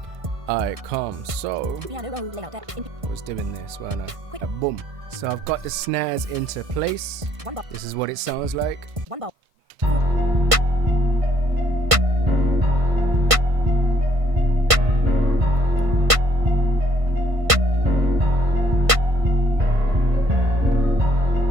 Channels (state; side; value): late; left; 1.5 ms